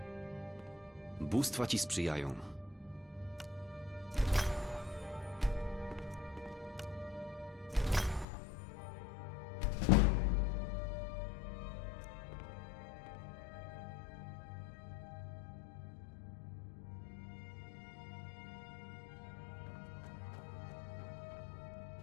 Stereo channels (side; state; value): right; drops out; at 8.2 s